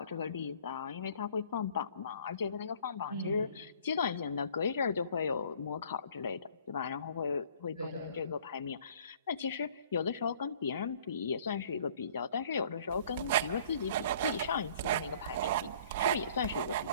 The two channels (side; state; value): both; inverted; correlation -0.54